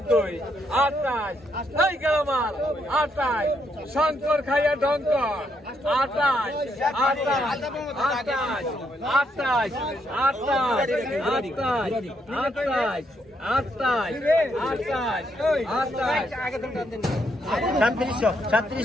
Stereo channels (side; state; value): both; normal; correlation 0.76